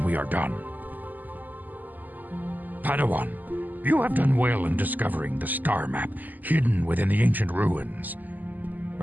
we are done. Padawan, you have done well in discovering the star map hidden within the ancient ruins.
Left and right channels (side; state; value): left; late; 0.084 ms